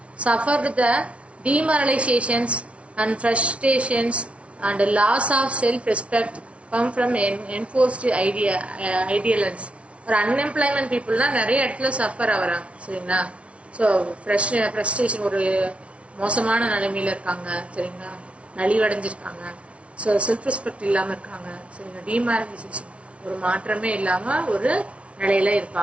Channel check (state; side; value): late; left; 0.062 ms